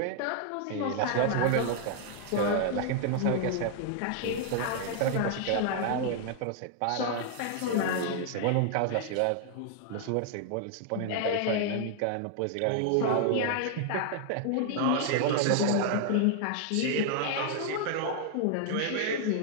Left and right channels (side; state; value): both; different; correlation 0.00